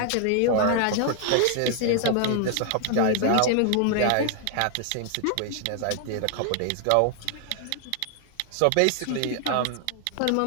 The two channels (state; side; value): different; both; correlation 0.00